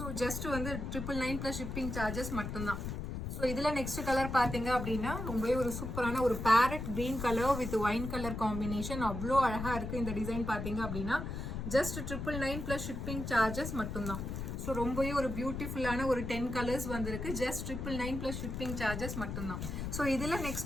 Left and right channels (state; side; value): noise; left; rumble, 5 dB below the sound